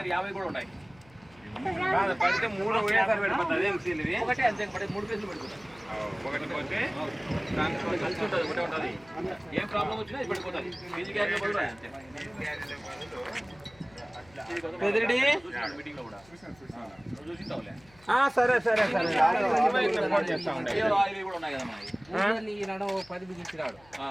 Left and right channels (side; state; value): left; noise; hum, 27 dB below the sound